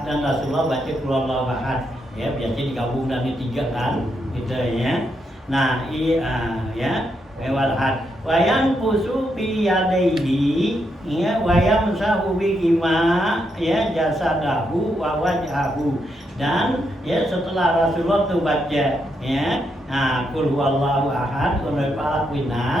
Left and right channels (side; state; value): both; normal; correlation 0.80